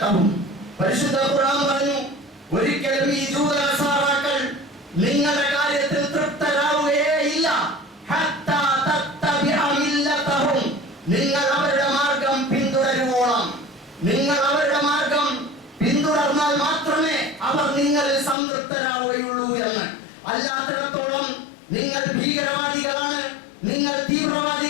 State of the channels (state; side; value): drops out; right; at 18.4 s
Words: പരിശുദ്ധ ഖുർആൻ പറഞ്ഞു, ഒരിക്കലും ഈ ജൂത നസാറാക്കൾ നിങ്ങളുടെ കാര്യത്തിൽ തൃപ്തരാവുകയില്ല. നിങ്ങൾ അവരുടെ മാർഗം പിന്തുടരുവോളം, നിങ്ങൾ അവരുടെ മാർഗം പിന്തുടർന്നാൽ മാത്രമേ അവർ നിങ്ങളിൽ സംതൃപ്തരാവുകയുള്ളൂ എന്ന്. അല്ലാത്തിടത്തോളം നിങ്ങൾ ഭീകരവാദികളാണ്, നിങ്ങൾ